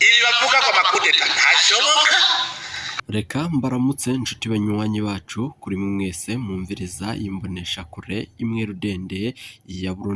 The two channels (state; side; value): identical; both; correlation 1.00